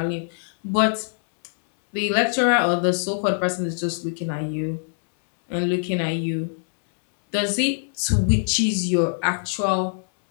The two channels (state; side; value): silent; right; 63 dB below the other